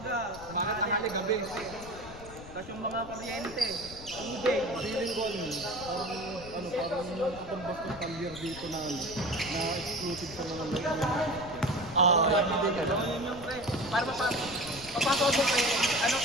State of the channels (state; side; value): noise; left; rumble, 15 dB below the sound